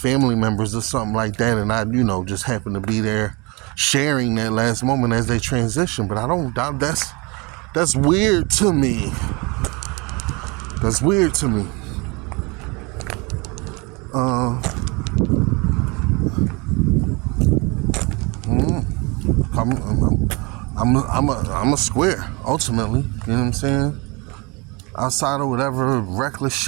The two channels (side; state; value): left; quieter; 27.8 dB